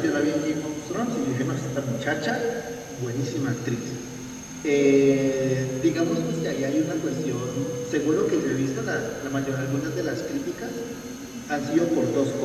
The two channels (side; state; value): both; identical; correlation 1.00